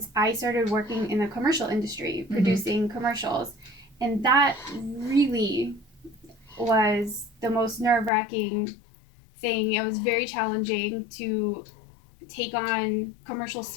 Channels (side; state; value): right; drops out; at 8.1 s